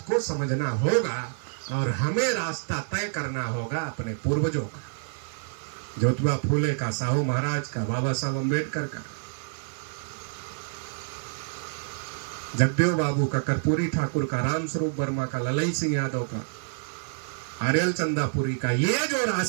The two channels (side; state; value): left; silent; digital silence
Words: को समझना होगा और हमें रास्ता तय करना होगा अपने पूर्वजों का, ज्योतिबा फूले का, साहू महाराज का, बाबा साहब अम्बेडकर का, जगदेव बाबू का, कर्पूरी ठाकुर का, राम स्वरूप वर्मा का, ललई सिंह यादव का, आर्यल चंदापुरी का। ये जो